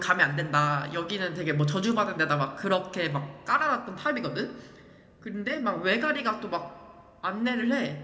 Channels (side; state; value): both; identical; correlation 1.00